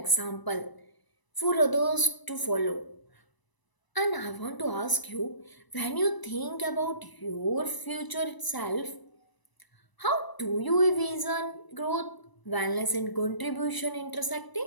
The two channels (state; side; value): late; right; 1.0 ms